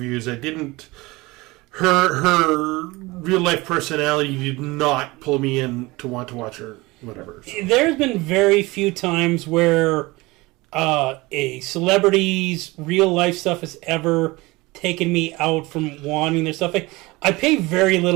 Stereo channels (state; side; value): quieter; left; 22.2 dB